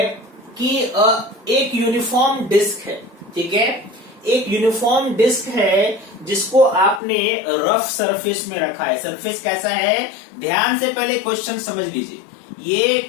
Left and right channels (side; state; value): right; drops out; at 7.0 s